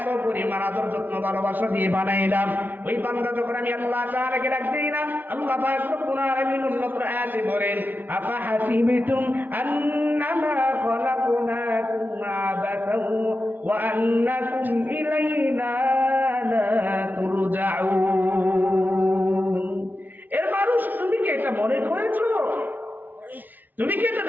পরিমাণ আদর যত্ন ভালোবাসা দিয়ে বানাইলাম। ওই বান্দা যখন আমি আল্লাহ তাআলাকে ডাক দেই না, আল্লাহ পাক রব্বুল আলামিন উন্নত আয়াতে বলেন, আফা হাসিবতুম আন্নামা খালাকনাকুম আবাসান ওয়া আন্নাকুম ইলাইনা লা তুরজাউন। এর মানুষ, তুমি কি এটা মনে করেছো? তুমি কি এটা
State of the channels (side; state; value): left; late; 0.085 ms